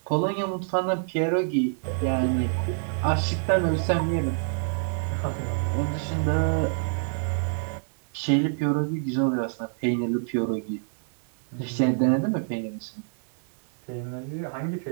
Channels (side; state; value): left; silent; digital silence